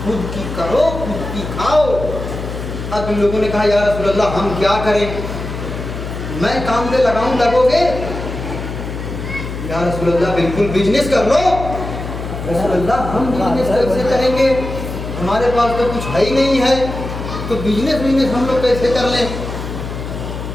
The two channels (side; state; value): left; noise; hum, 7 dB below the sound